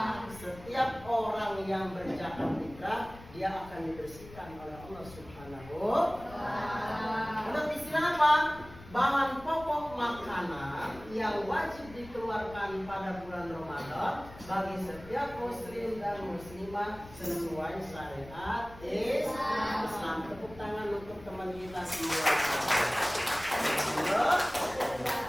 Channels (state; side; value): noise; left; rumble, 18 dB below the sound